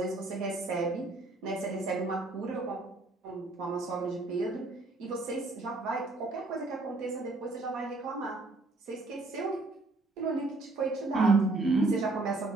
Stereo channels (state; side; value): quieter; left; 3.2 dB